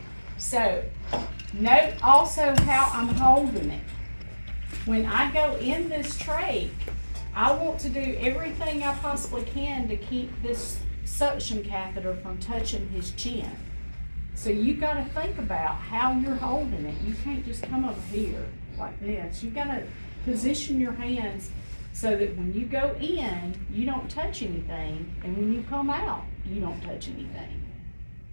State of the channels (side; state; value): both; inverted; correlation -1.00